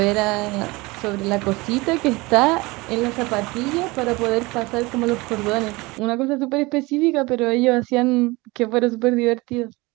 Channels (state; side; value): quieter; left; 23.1 dB